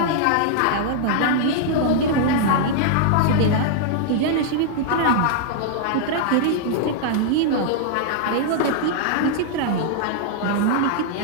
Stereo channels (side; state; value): both; different; correlation -0.01